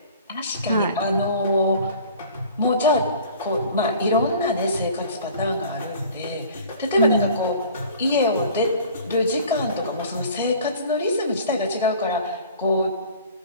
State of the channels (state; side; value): inverted; both; correlation -0.47